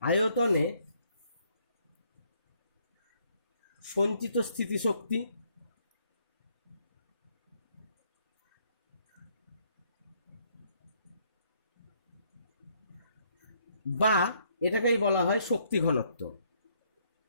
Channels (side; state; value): both; inverted; correlation -0.68